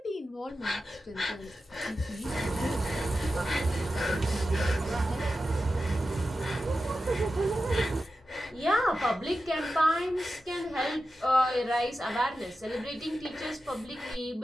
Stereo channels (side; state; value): both; normal; correlation 0.92